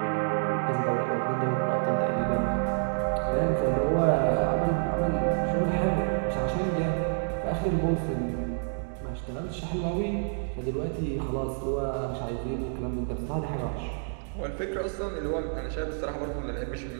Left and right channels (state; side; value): silent; left; digital silence